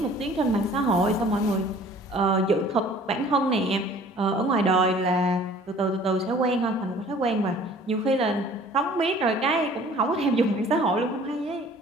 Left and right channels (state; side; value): normal; both; correlation 0.51